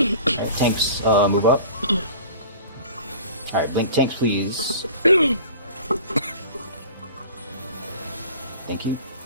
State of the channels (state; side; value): inverted; both; correlation -0.43